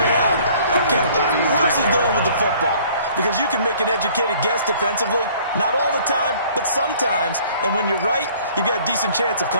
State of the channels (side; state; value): both; inverted; correlation -0.55